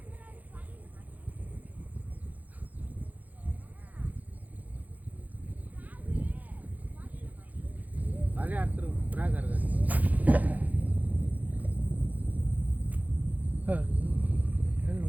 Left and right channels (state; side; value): late; left; 0.079 ms